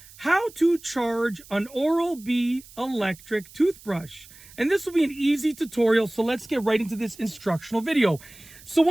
how to charge an Oral-B electric toothbrush. And this will be an easy tutorial, so let's get right into this instructional video. So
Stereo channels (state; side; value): noise; right; hiss, 21 dB below the sound